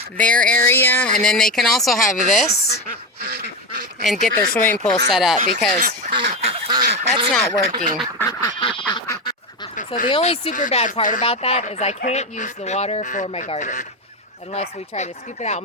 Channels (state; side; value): normal; both; correlation 0.16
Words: their area, and then they can also have this and get their swimming pool set up because that's not working. So the only super bad part about that is I can't use the water for my garden unless we try to scoop it out